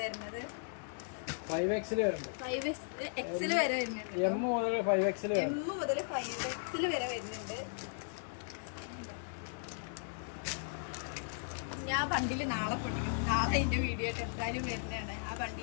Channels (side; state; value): right; silent; digital silence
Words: വരുന്നത്. 5XL വരുന്നുണ്ട്. 5XL വരെ വരുന്നുണ്ട്. M മുതൽ 5XL വരെ വരുന്നുണ്ട്. ഞാൻ ആ ബണ്ടിൽ നാളെ പൊട്ടിക്കും. നാളെ അതിന്റെ വീഡിയോ ആയിട്ട് എന്തായാലും വരുന്നതാണ്. ആ